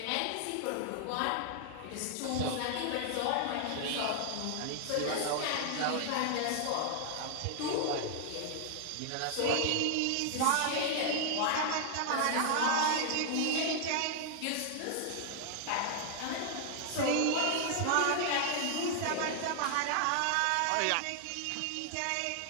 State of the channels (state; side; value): different; both; correlation 0.00